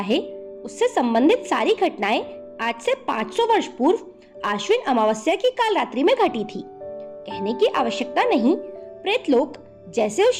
उससे संबंधित सारी घटनाएं आज से 500 वर्ष पूर्व आश्विन अमावस्या की काल रात्रि में घटी थी। कहने की आवश्यकता नहीं, प्रेतलोक जैसे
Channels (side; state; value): both; identical; correlation 1.00